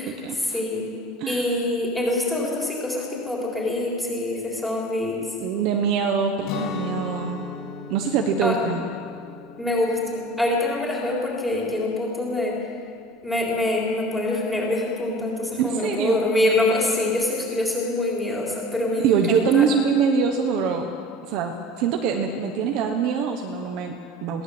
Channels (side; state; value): both; normal; correlation 0.40